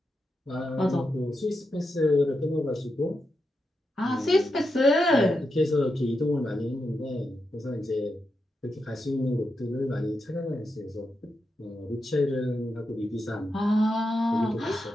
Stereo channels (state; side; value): normal; both; correlation 0.86